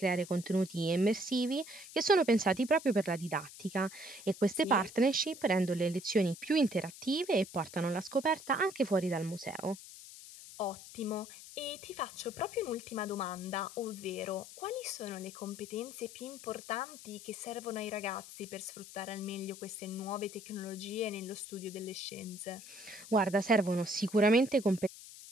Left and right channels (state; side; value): noise; left; hiss, 16 dB below the sound